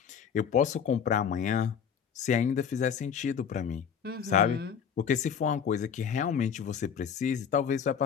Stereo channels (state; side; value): quieter; right; 7.5 dB